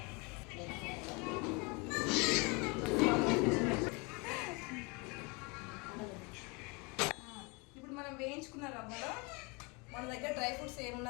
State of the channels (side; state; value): right; quieter; 29.0 dB